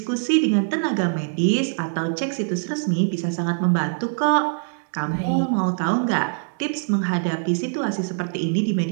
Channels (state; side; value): silent; left; digital silence